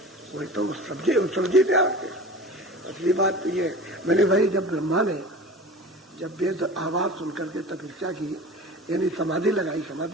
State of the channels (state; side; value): normal; both; correlation 0.37